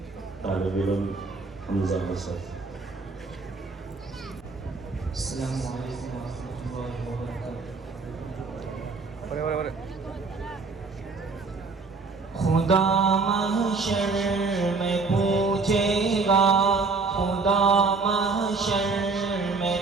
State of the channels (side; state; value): left; quieter; 4.2 dB